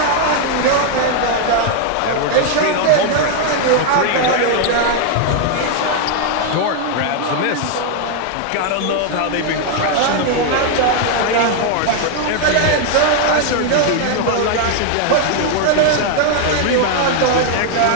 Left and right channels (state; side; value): different; both; correlation 0.00